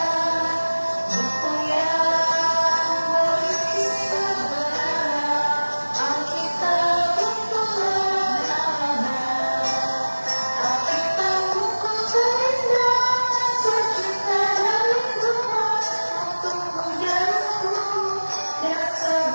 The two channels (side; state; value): both; inverted; correlation -1.00